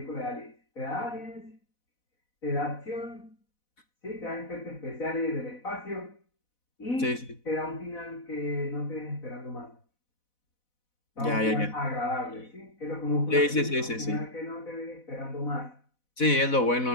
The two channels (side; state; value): right; late; 4.1 ms